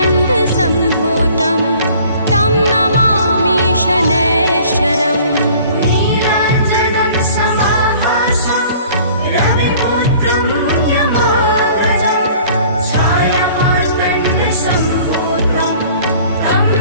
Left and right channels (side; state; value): both; inverted; correlation -0.51